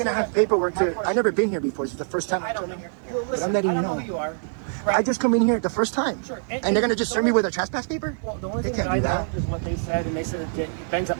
have paperwork to? I never been here before. It's the first time I I'm don't coming know. here. Well, listen, I'm letting I you don't know know. who you are. I just come in here the first time, Sure. and they're gonna just serve me with a trespass paper. Well, the only They thing can't that I do know that. is what they said, and they said it bans up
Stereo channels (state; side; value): silent; left; 62 dB below the other